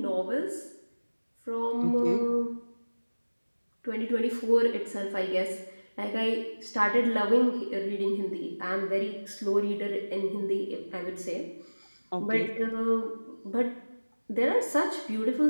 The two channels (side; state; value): both; inverted; correlation -1.00